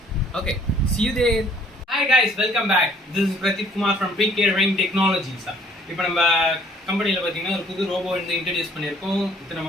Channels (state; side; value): normal; both; correlation 0.58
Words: okay, see you there. Hi guys, welcome back. This is Pradeep Kumar from PK Rain Technologies. இப்போ நம்ம கம்பெனியில் பார்த்தீங்கன்னா ஒரு புது ரோபோ வந்து இன்ட்ரடியூஸ் பண்ணியிருக்கோம். இத்தனை